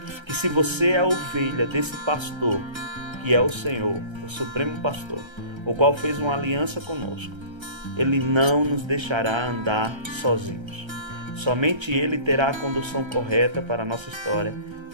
que se você é a ovelha desse pastor, que é o Senhor, o Supremo Pastor, o qual fez uma aliança conosco, Ele não nos deixará andar sozinhos. Somente Ele terá a condução correta para a nossa história,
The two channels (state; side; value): late; left; 1.3 ms